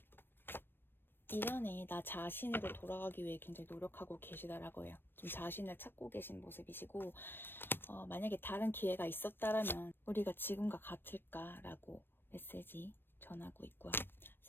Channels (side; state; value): right; late; 0.098 ms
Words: 이전에 나 자신으로 돌아가기 위해 굉장히 노력하고 계시다라고 해요. 좀 자신을 찾고 계신 모습이시고, 만약에 다른 기회가 있었다라면 우리가 지금과 같을까라고 메시지 전하고 있고요.